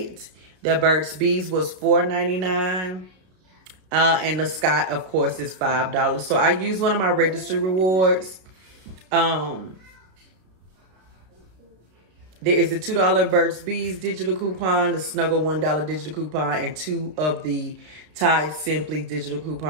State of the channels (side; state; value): left; late; 33 ms